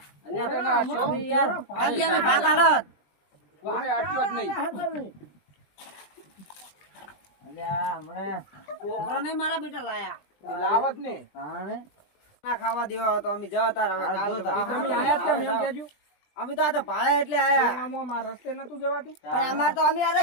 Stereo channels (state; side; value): late; right; 20 ms